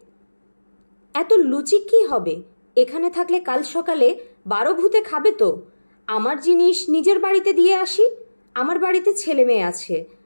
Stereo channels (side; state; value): both; inverted; correlation -1.00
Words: এত লুচি কি হবে? এখানে থাকলে কাল সকালে 12 ভূতে খাবে তো। আমার জিনিস নিজের বাড়িতে দিয়ে আসি। আমার বাড়িতে ছেলে মেয়ে আছে,